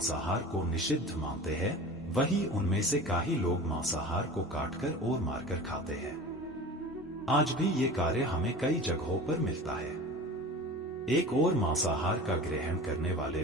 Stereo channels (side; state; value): both; normal; correlation 0.36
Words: को निषिद्ध मानते हैं, वही उनमें से काफी लोग मांसाहार को काटकर और मारकर खाते हैं। आज भी ये कार्य हमें कई जगहों पर मिलता है। एक और मांसाहार का ग्रहण करने वाले